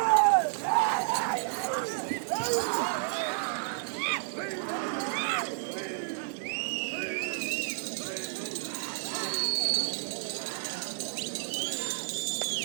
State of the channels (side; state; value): left; silent; digital silence